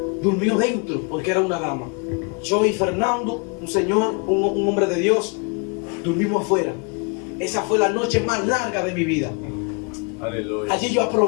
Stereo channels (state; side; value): quieter; right; 34.3 dB